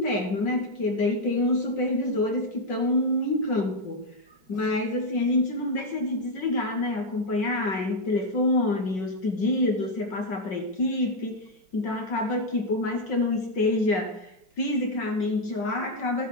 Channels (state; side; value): late; right; 5.4 ms